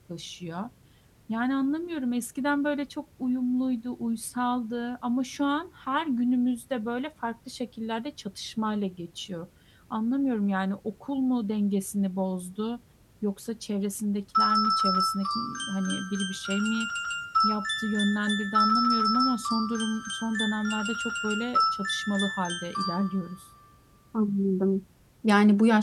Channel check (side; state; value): both; identical; correlation 1.00